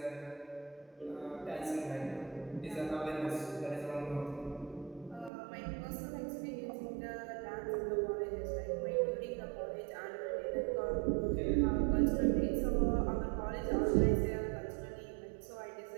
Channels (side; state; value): left; drops out; at 5.3 s